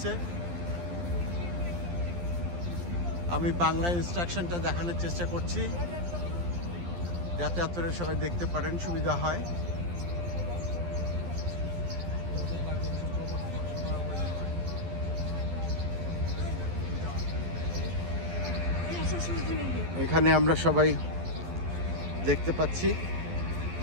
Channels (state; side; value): late; left; 12 ms